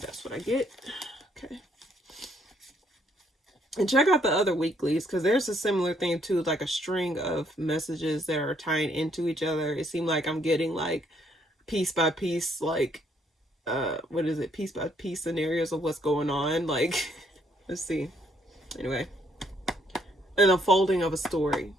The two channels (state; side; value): normal; both; correlation 0.69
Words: what I get. Okay. And check out the other weeklies, because there's a similar thing too, like a string of messages that are tying into each other. It seemed like I'm getting, like, piece by piece, like, what is it? Piece by piece scenarios of what's going on. Like, let's see. Anyway. An unfolding of a story.